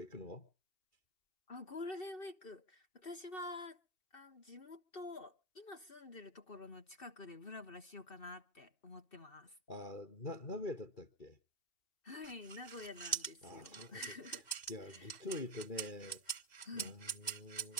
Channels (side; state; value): right; late; 2.7 ms